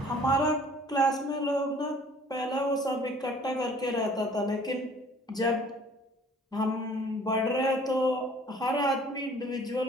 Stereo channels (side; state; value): both; normal; correlation 0.53